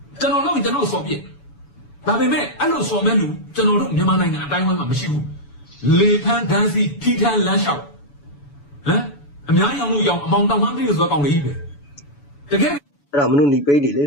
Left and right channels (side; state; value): right; late; 7.0 ms